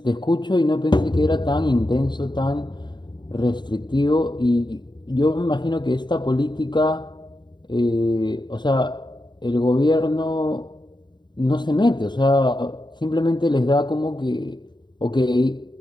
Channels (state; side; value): late; right; 0.22 ms